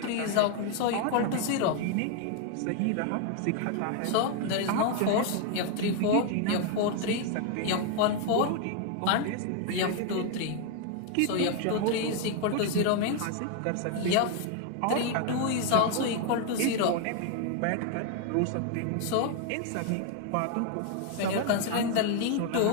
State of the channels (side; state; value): both; different; correlation 0.00